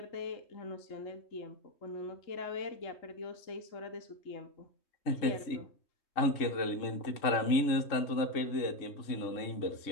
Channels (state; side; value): late; right; 3.6 ms